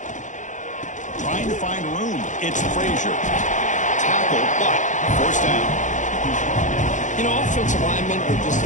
trying to find room. It's Frazier. Tackle, but first down. You know, offensive linemen are just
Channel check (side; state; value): right; late; 0.36 ms